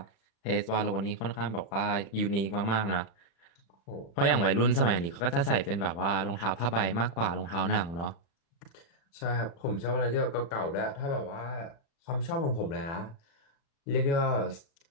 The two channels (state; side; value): late; right; 35 ms